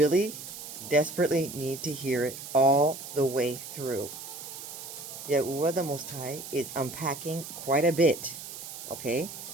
desperately need to hear it all the way through. Yahuah the Most High is unpacking quite a bit, okay?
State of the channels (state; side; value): noise; right; hiss, 11 dB below the sound